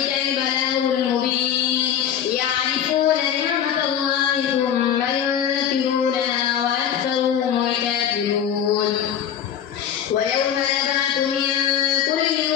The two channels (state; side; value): quieter; right; 9.2 dB